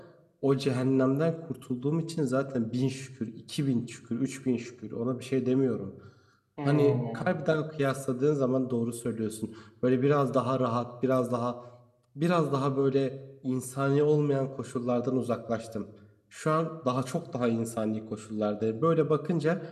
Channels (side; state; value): both; identical; correlation 1.00